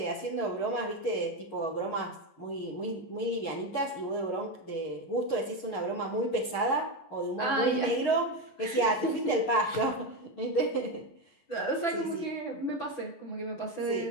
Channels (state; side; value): late; right; 11 ms